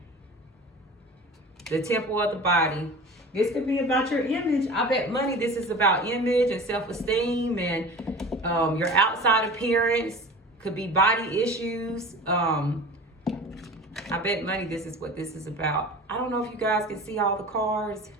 The temple of the body. This could be about your image. I bet money this is about image and self-esteem and your outside appearance. Could be body issues. I bet money this is what this is about. I don't know if you guys can see all the cards,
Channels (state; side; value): normal; both; correlation 0.37